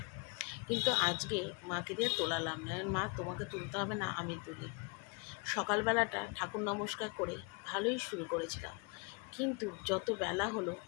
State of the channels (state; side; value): quieter; right; 31.8 dB